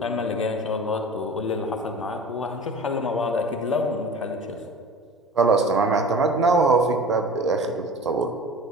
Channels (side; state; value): both; normal; correlation 0.39